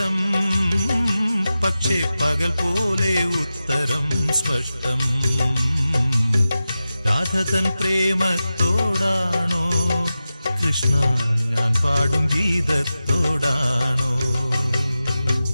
പക്ഷേ പകൽ പോലെ ഉത്തരം സ്പഷ്ടം. രാധതൻ പ്രേമത്തോടാണോ കൃഷ്ണ ഞാൻ പാടും ഗീതത്തോടാണോ?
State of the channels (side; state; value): both; inverted; correlation -0.93